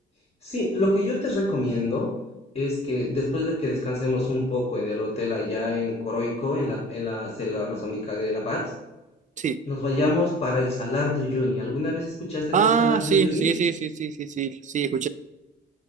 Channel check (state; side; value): normal; both; correlation 0.44